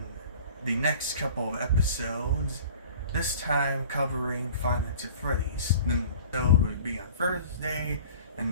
the next couple of episodes. This time covering Five Nights at Freddy's. The episode would be on Thursday,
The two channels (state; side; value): inverted; both; correlation -0.45